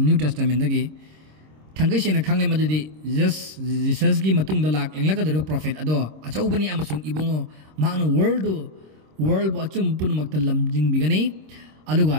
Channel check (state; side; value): late; left; 26 ms